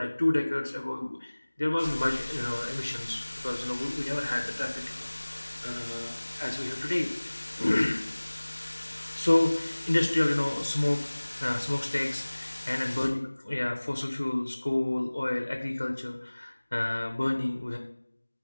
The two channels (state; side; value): inverted; both; correlation -1.00